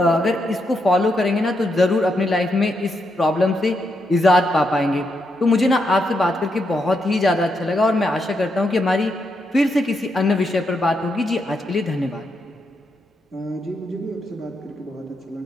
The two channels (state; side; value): normal; both; correlation 0.81